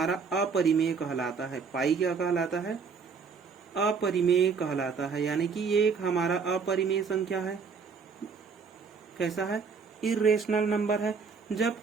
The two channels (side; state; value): left; quieter; 5.4 dB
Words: अपरिमेय कहलाता है। पाई क्या कहलाता है, अपरिमेय कहलाता है। यानी कि ये एक हमारा अपरिमेय संख्या है। कैसा है, इरेशनल नंबर है।